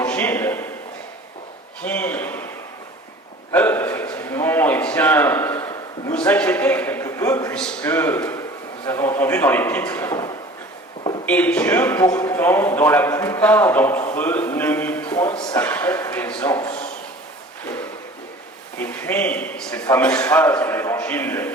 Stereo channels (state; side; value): normal; both; correlation 0.44